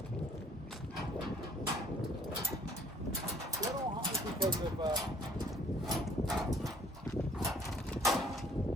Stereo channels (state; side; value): normal; both; correlation 0.59